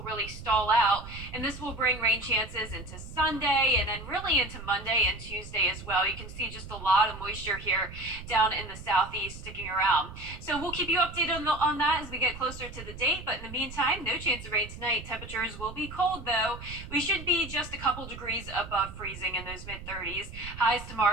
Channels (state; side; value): noise; right; rumble, 12 dB below the sound